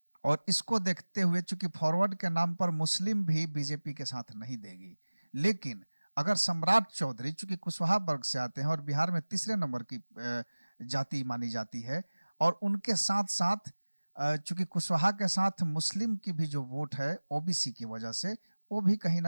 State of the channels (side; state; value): both; inverted; correlation -1.00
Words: और इसको देखते हुए चूंकि फॉरवर्ड के नाम पर मुस्लिम भी बीजेपी के साथ नहीं देगी, लेकिन अगर सम्राट चौधरी चूंकि कुशवाहा वर्ग से आते हैं और बिहार में तीसरे नंबर की जाति मानी जाती है, और उनके साथ साथ चूंकि कुशवाहा के साथ मुस्लिम की भी जो वोट है ओबीसी की वजह से, वो भी कहीं